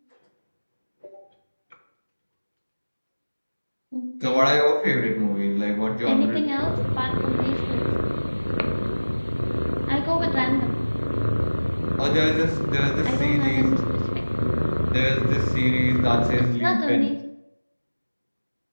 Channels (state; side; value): inverted; both; correlation -1.00